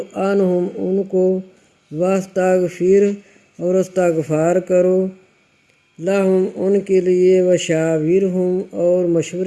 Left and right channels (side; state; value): both; identical; correlation 1.00